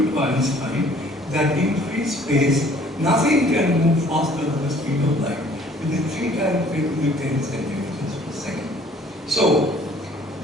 to Einstein that in free space nothing can move faster than the speed of light, which is 3 times 10 to the 10 centimeters per second. So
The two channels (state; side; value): normal; both; correlation 0.56